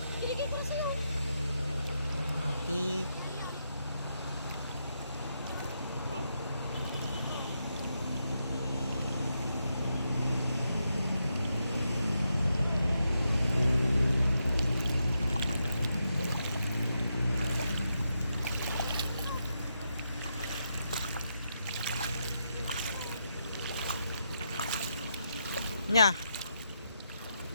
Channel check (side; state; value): both; inverted; correlation -0.83